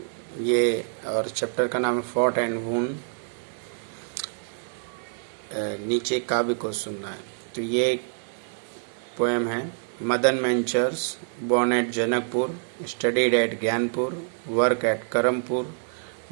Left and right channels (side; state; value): left; silent; digital silence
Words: ये और चैप्टर का नाम है फॉट एंड वून। नीचे काव्य को सुनना है। तो ये एक पोएम है। Madan मेंचर्स born at Janakpur, studied at Gyanpur, work at Karampur,